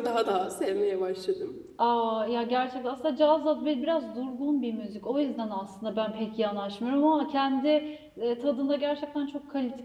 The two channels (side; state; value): both; identical; correlation 1.00